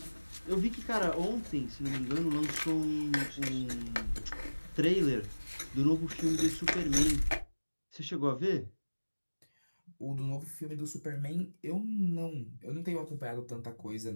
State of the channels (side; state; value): both; inverted; correlation -1.00